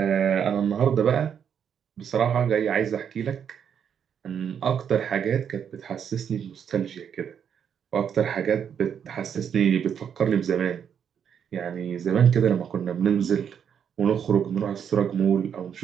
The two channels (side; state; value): left; quieter; 8.0 dB